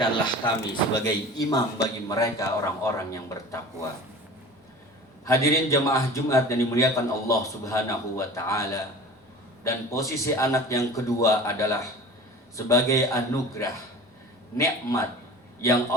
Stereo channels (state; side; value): normal; both; correlation 0.40